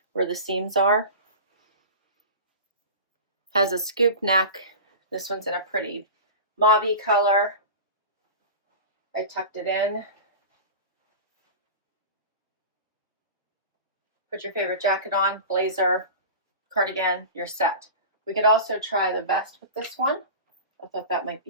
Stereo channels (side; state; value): both; inverted; correlation -0.32